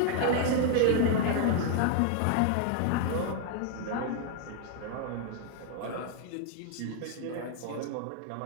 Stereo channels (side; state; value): both; different; correlation 0.00